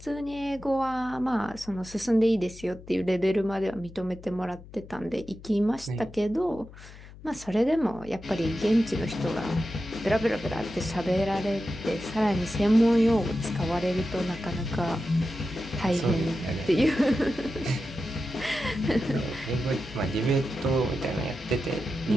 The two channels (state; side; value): noise; left; hum, 18 dB below the sound